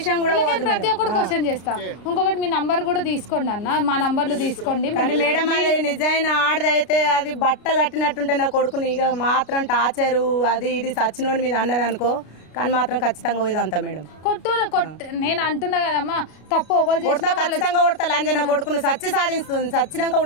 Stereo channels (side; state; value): right; late; 33 ms